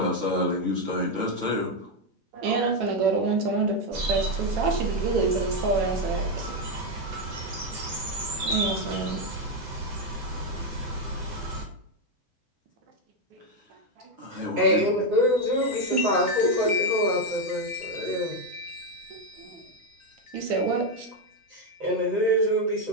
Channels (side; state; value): left; late; 8.0 ms